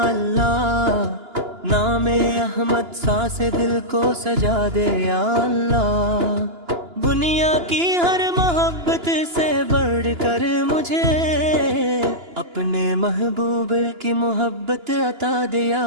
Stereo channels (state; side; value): late; left; 2.9 ms